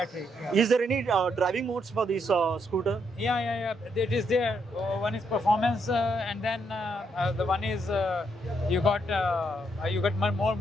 Yeah. Is there any driving modes for this scooter? Yeah. It is there. One is performance, and then the one is you got more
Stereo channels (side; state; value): both; normal; correlation 0.76